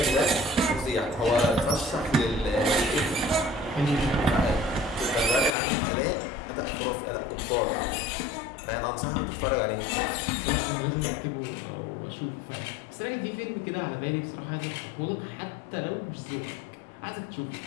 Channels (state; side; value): drops out; right; at 5.5 s